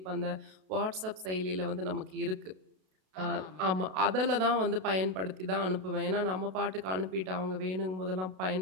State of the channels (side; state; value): left; late; 32 ms